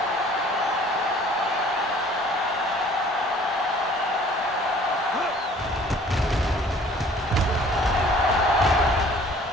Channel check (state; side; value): normal; both; correlation 0.53